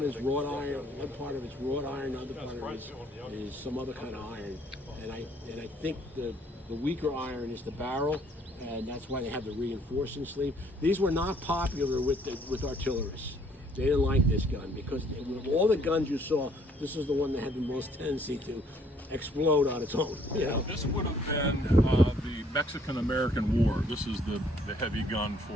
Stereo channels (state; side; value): normal; both; correlation 0.63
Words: is wrought iron, one part of it's wrought iron, the other part of it is some other kind of iron. And I think the weaker iron is the barrel, and that's why they have the reinforcing sleeve. These were not popular with artillerists. They didn't like this gun because all the guns you saw, this is the one that had the most tendency to explode on its own. You know? This would have been the Mexican-American War. This is the heavy gun